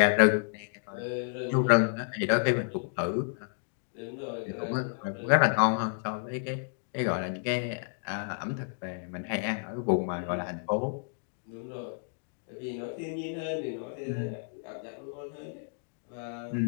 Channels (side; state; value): right; silent; digital silence